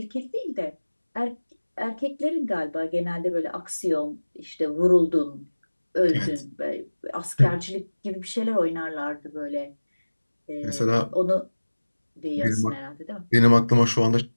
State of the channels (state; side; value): inverted; both; correlation -1.00